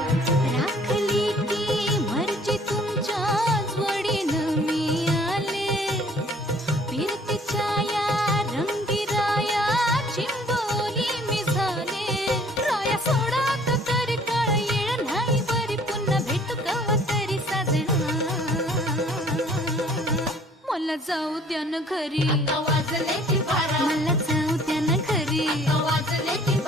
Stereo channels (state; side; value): normal; both; correlation 0.56